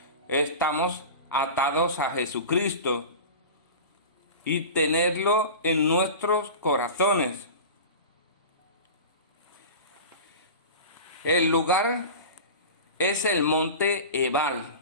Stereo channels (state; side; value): inverted; both; correlation -0.31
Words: estamos atados a Jesucristo y tenerlo en nuestros corazones. El lugar es el monte Ebal.